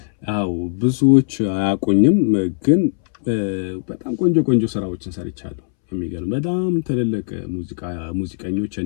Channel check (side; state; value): right; silent; 66 dB below the other